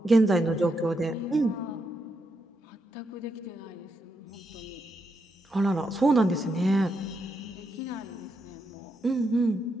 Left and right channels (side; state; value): both; normal; correlation 0.82